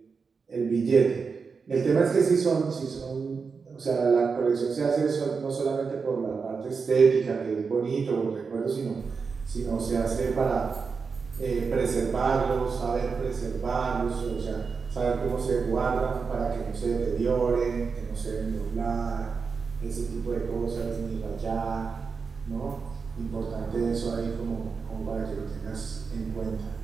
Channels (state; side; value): quieter; left; 5.2 dB